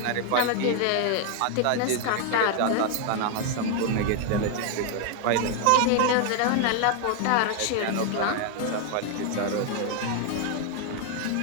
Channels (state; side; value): different; both; correlation 0.00